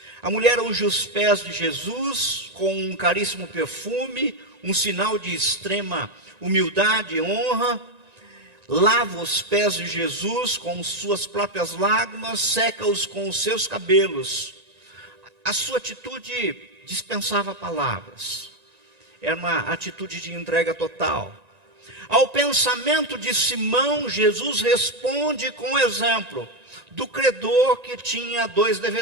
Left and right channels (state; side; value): late; left; 1.9 ms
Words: A mulher unge os pés de Jesus com um caríssimo perfume, um sinal de extrema humildade e honra. Lava os pés de Jesus com suas próprias lágrimas, seca-os com os seus cabelos. A sua atitude dispensava palavras. Era uma atitude de entrega total. Ao pensamento de Simão, Jesus responde com o exemplo do credor que tinha 2